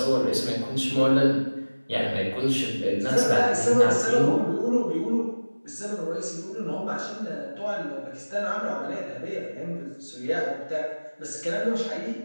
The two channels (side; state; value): both; inverted; correlation -1.00